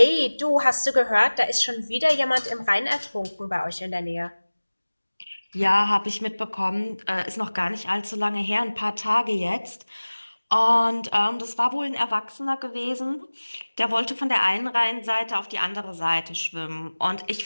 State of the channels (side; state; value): both; inverted; correlation -1.00